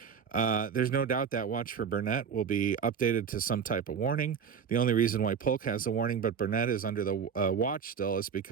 There's no doubt that watch for Burnett will be updated to some type of warning. The only reason why Polk has the warning but Burnett is under the watch still is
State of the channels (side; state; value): left; quieter; 6.9 dB